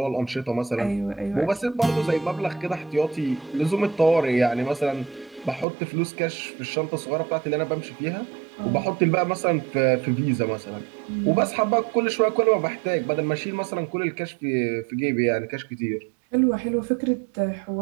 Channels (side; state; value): left; drops out; at 5.7 s